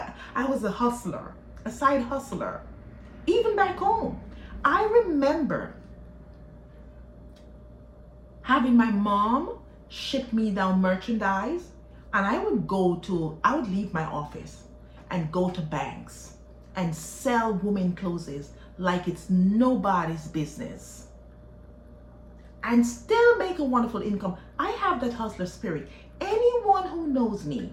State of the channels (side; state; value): both; identical; correlation 1.00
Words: I was a hustler, a side hustler. Even back home, I remember having my mom ship me down merchandise, and I would leave my office and go to banks and sell women clothes like it's nobody's business and still make a wonderful income. I have that hustler spirit. Anyone who knows me